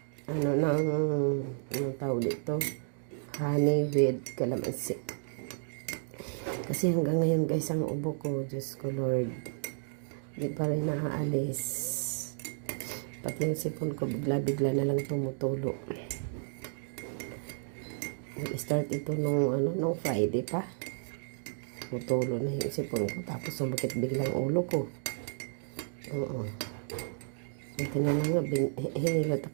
anong tawag dito, honey with calamansi. Kasi hanggang ngayon guys, ang ubo ko, Diyos ko Lord, hindi pa rin naaalis. Pati yung sipon ko bigla-bigla na lang tumutulo. Nag-start ito nung Friday pa. Tumutulo na yung sipon ko, tapos sumakit biglang ulo ko. Oo. Ito na nga, hinilat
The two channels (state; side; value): silent; left; digital silence